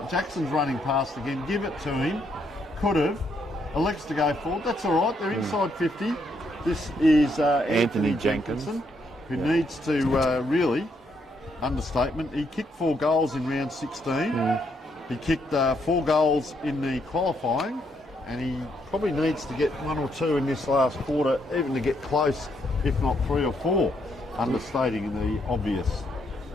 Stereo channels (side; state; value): both; normal; correlation 0.74